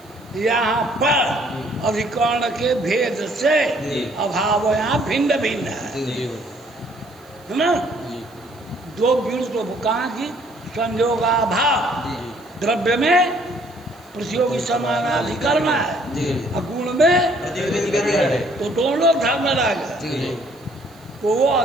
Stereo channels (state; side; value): noise; right; hiss, 29 dB below the sound